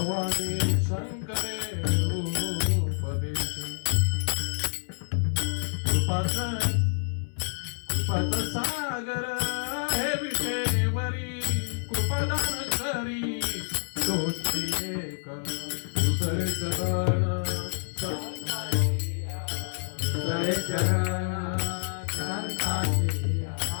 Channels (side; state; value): right; silent; 59 dB below the other